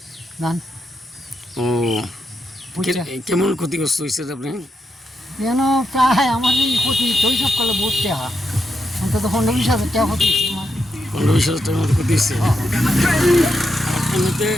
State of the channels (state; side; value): normal; both; correlation 0.83